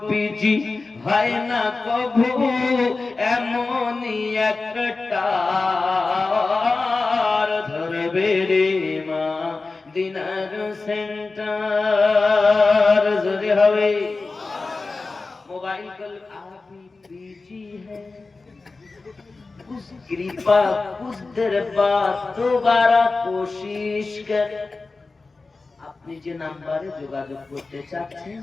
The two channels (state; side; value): quieter; right; 3.8 dB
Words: বিজি হয় না কভু এমনই একটা ধরবে রে মা দিনার সেন্টার। যদি হবে মোবাইল आजकल आप ही बीजी है कुछ कृपा कुछ देर बाद दोबारा कोशिश कर আপনি যে নাম্বারে যোগাযোগ করতে চাচ্ছেন